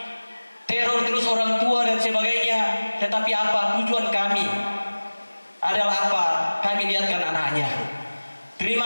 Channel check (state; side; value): inverted; both; correlation -1.00